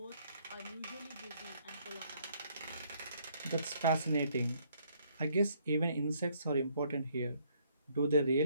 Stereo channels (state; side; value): inverted; both; correlation -0.66